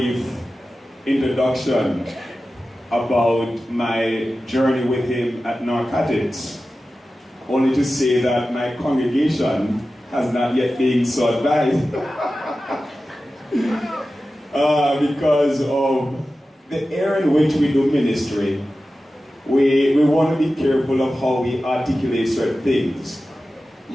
introduction about my journey with him at Narcotics. Only to say that my congregation has not yet been so advised because of the area in which we do ministry. We want to be careful of how we articulate certain things.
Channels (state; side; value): normal; both; correlation 0.94